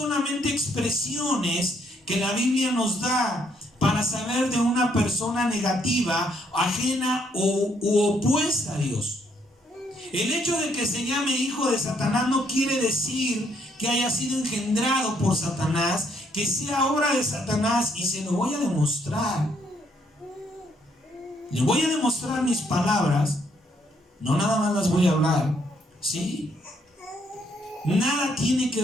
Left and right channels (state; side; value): normal; both; correlation 0.71